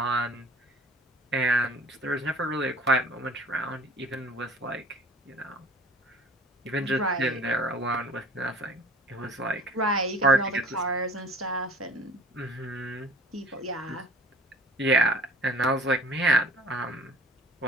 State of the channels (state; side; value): normal; both; correlation 0.47